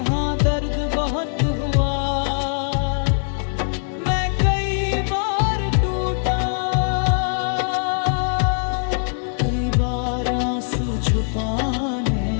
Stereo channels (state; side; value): silent; right; 65 dB below the other